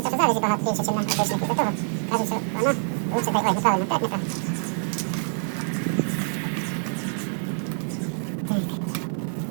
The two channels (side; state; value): left; silent; digital silence